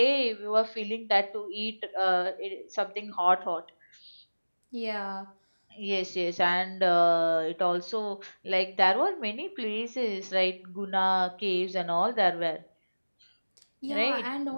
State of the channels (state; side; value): inverted; both; correlation -1.00